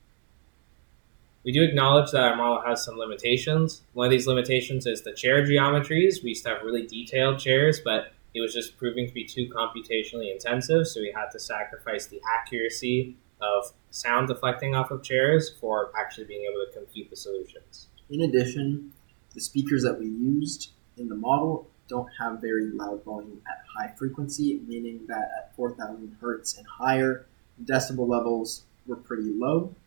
We do acknowledge that our model has some limitations. One of these limitations is the chair geometries. We used to have really detailed chairs, but it was just proving to be too computationally intensive, so we had to sacrifice the accuracy of sound deflecting off of chairs for actually being able to compute the solutions. In addition, the speakers that we used in the model don't have very loud volume at high frequency, meaning that at 4,000 hertz and higher, decibel levels were pretty low.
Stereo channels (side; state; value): left; silent; digital silence